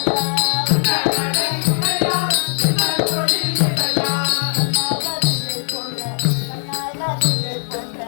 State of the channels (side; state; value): right; silent; digital silence